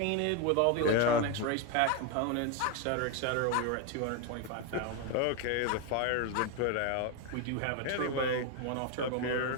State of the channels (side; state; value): both; different; correlation 0.02